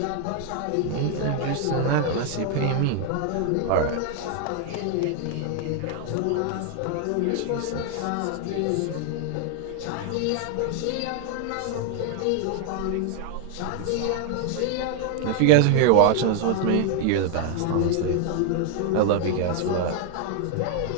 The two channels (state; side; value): different; both; correlation 0.00